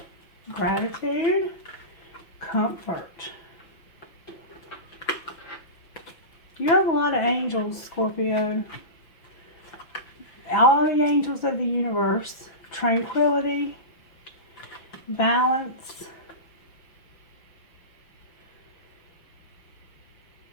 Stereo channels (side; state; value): right; late; 5.8 ms